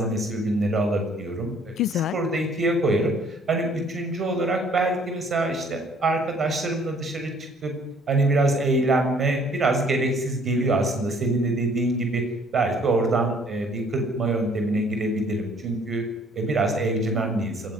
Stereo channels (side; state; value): both; normal; correlation 0.59